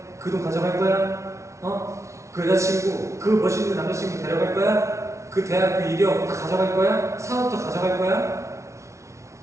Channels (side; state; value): left; late; 0.14 ms